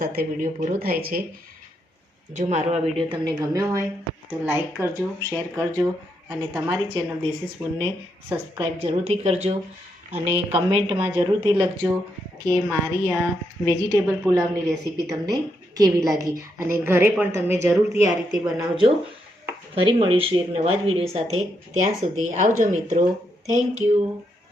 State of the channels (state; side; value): normal; both; correlation 0.80